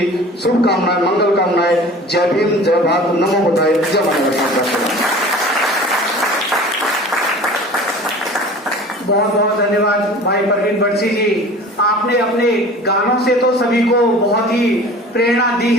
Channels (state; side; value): normal; both; correlation 0.42